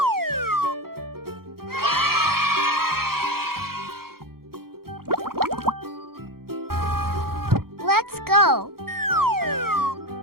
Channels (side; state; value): left; late; 0.94 ms